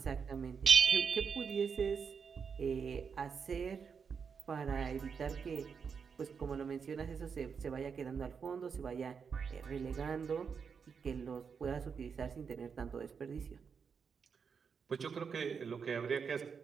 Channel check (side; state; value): left; quieter; 6.2 dB